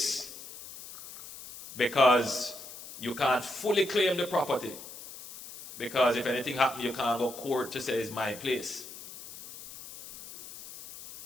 because you can't fully claim the property, because if anything happens, you can't go to court to say it's my place.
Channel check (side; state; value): left; noise; hiss, 14 dB below the sound